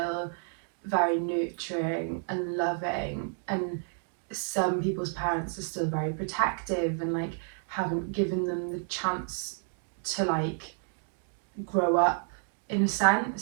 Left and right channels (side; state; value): left; silent; 57 dB below the other